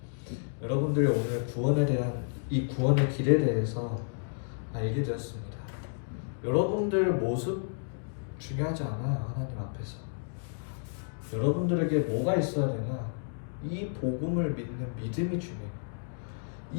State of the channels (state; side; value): silent; right; digital silence